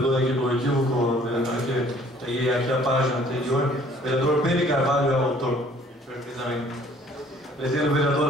aqui do equívoco, vereador, que peguei aqui a página anterior. Vereador Pedro Carvalho é o autor. Perfeitamente. Pretende o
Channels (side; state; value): both; normal; correlation 0.57